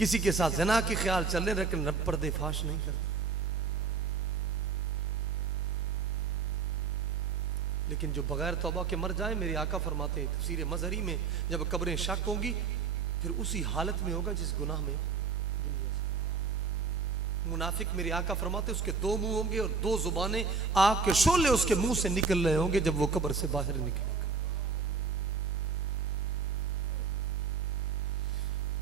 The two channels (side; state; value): left; quieter; 5.1 dB